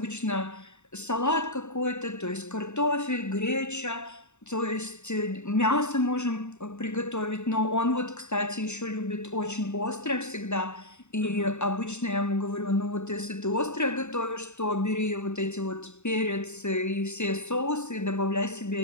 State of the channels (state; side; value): late; right; 0.83 ms